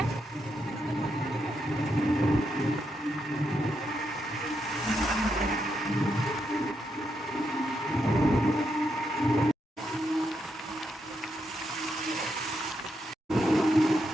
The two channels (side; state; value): both; normal; correlation 0.81